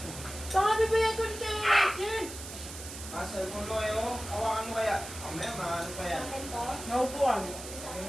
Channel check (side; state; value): right; noise; hiss, 11 dB below the sound